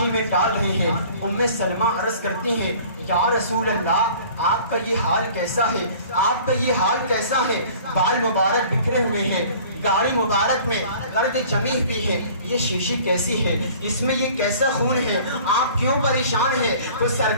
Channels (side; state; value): both; inverted; correlation -0.48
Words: میں ڈال رہے ہیں۔ ام سلمہ عرض کرتی ہیں یا رسول اللہ آپ کا یہ حال کیسا ہے، آپ کا یہ حال کیسا ہے، بال مبارک بکھرے ہوئے ہیں، گاڑی مبارک میں گرد جمی ہوئی ہے، یہ شیشی کیسی ہے، اس میں یہ کیسا خون ہے، آپ کیوں پریشان ہیں؟ تو